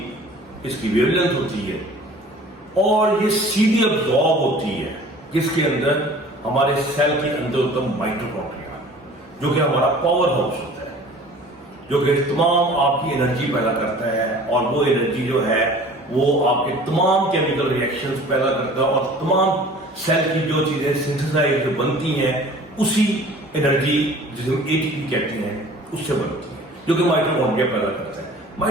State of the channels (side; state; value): both; normal; correlation 0.46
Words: اس کی ویو لینتھ ہوتی ہے، اور یہ سیدھی ابزارب ہوتی ہے جس کے اندر ہمارے سیل کے اندر ہوتا ہے مائٹوکونڈریا، جو کہ ہمارا پاور ہاؤس ہوتا ہے، جو کہ تمام آپ کی انرجی پیدا کرتا ہے، اور وہ انرجی جو ہے وہ آپ کے تمام کیمیکل ریئیکشنز پیدا کرتا ہے، اور تمام سیل کی جو چیزیں سنتھسائز بنتی ہیں اسی انرجی جسے ہم اے ٹی پی کہتے ہیں اس سے بنتی ہے، جو کہ مائٹوکونڈریا پیدا کرتا ہے۔